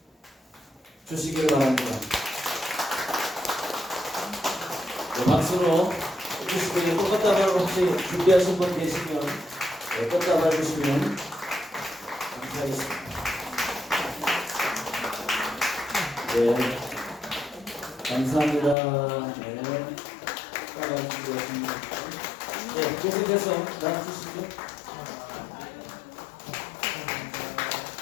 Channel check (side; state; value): right; drops out; at 18.8 s